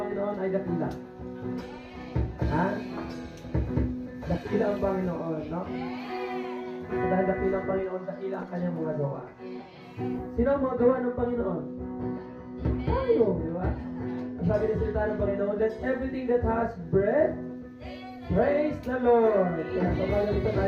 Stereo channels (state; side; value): identical; both; correlation 1.00